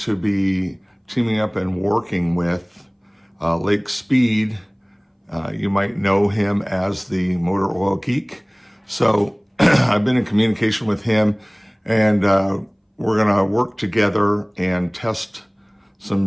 be teaming up and working with Lake Speed. You might know him as the Motor Oil Geek. So I've been in communication with him, and we're going to work together and test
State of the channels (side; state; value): both; identical; correlation 1.00